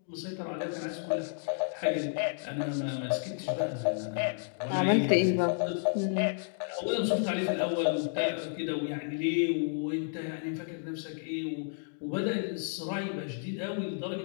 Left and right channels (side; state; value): right; silent; digital silence